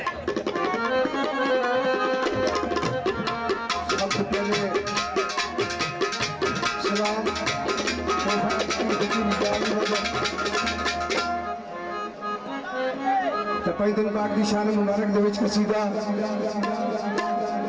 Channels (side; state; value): both; identical; correlation 1.00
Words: पैदल पाक की शान मुबारक दे विच कसीदा